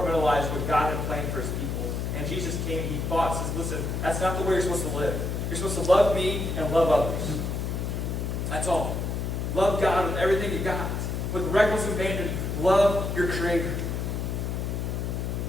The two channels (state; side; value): noise; left; hum, 2 dB below the sound